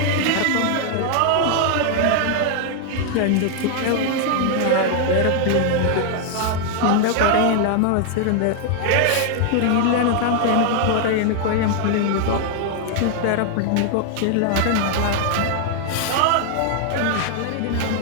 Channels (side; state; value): both; different; correlation 0.00